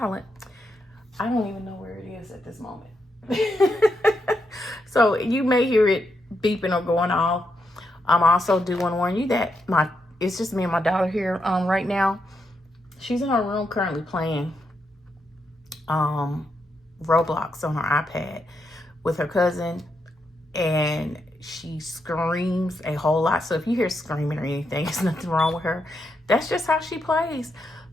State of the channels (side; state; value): both; normal; correlation 0.82